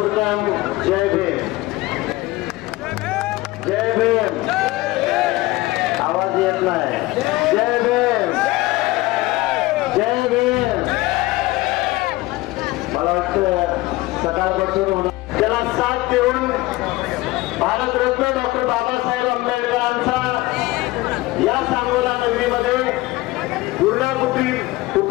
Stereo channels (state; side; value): quieter; right; 19.6 dB